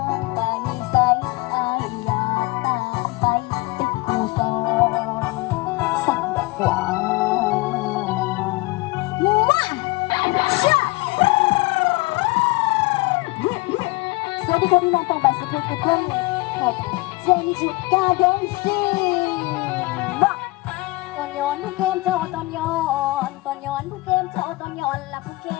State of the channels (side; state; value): right; quieter; 22.8 dB